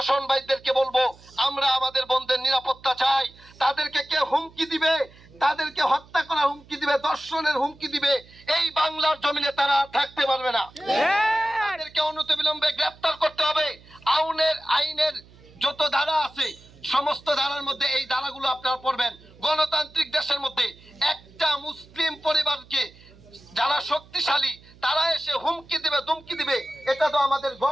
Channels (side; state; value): right; noise; hum, 24 dB below the sound